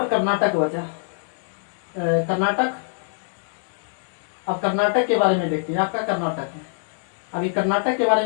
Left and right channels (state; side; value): silent; right; digital silence